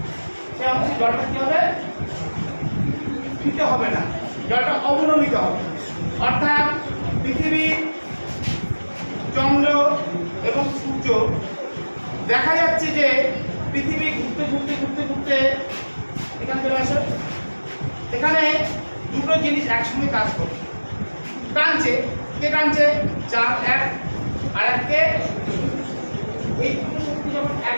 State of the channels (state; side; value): inverted; both; correlation -1.00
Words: সে অংশে জলটা কি হবে? স্ফীত হবে না, জলটা অবনমিত হবে। অর্থাৎ পৃথিবী, চন্দ্র এবং সূর্য, দেখা যাচ্ছে যে পৃথিবী ঘুরতে ঘুরতে ঘুরতে ঘুরতে এখানে চলে আসে। এখানে দুটো জিনিস একসঙ্গে কাজ করছে, টানছে। কে টানছে? চাঁদ এক আর এককে। এই দুটো শক্তি যখন